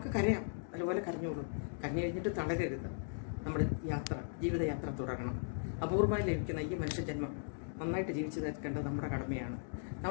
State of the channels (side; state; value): right; silent; digital silence